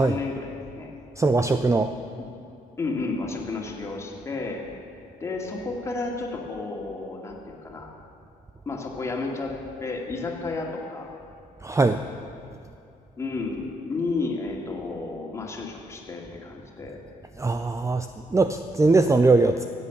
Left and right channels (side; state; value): both; normal; correlation 0.79